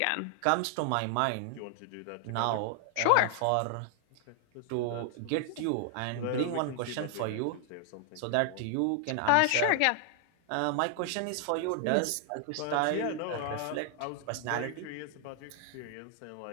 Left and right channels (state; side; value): different; both; correlation 0.00